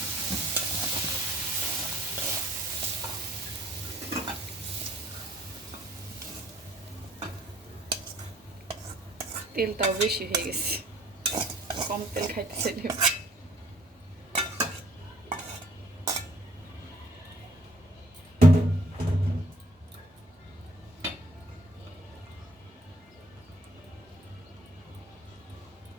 তেলটাও বেশি হয়ে গেছে, কম তেল খাইতে চাইলে।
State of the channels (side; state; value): both; normal; correlation 0.60